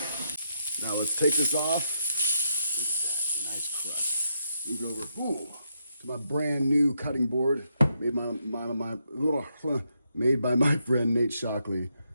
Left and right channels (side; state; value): both; inverted; correlation -0.80